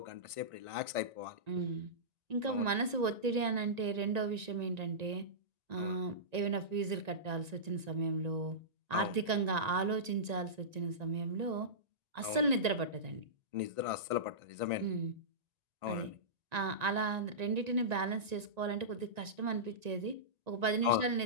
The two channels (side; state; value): left; late; 1.9 ms